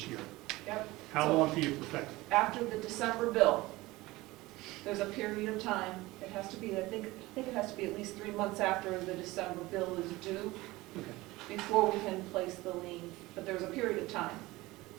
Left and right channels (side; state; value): left; quieter; 19.9 dB